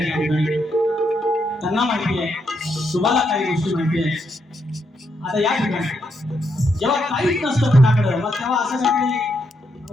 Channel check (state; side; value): normal; both; correlation 0.79